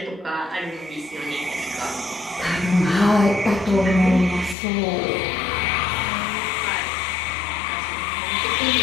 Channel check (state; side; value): drops out; right; at 4.5 s